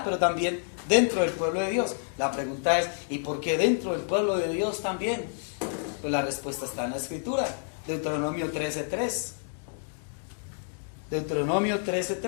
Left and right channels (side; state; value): right; silent; digital silence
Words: pero también dentro del pueblo de Dios. La pregunta es, ¿y por qué dentro del pueblo de Dios también? Pues la respuesta está en la Escritura. Deuteronomio 13:3. Deuteronomio